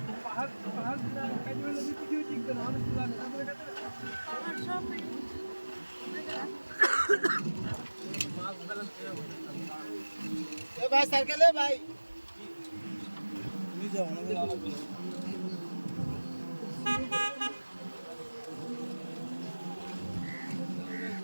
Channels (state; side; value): inverted; both; correlation -1.00